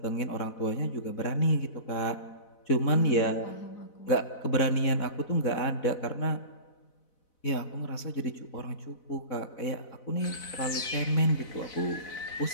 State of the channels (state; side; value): late; right; 4.0 ms